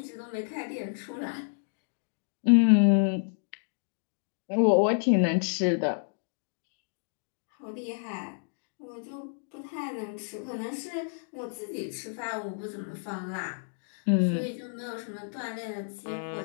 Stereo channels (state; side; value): silent; right; digital silence